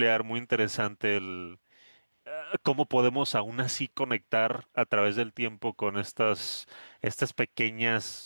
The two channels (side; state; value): both; inverted; correlation -1.00